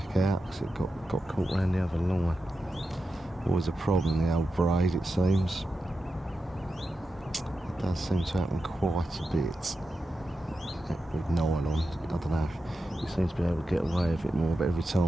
out because it got caught around the other line. Always a problem, the old braid, it seems. It does seem to happen quite a bit with nylon. I don't know, he seems to be able to get away with it more, but every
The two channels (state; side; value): normal; both; correlation 0.90